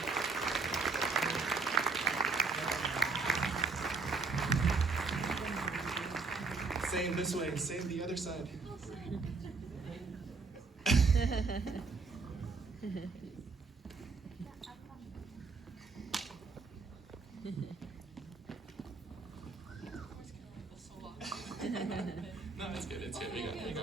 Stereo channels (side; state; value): left; quieter; 4.3 dB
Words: Same this way, same the other side. No, it's good, it's good. We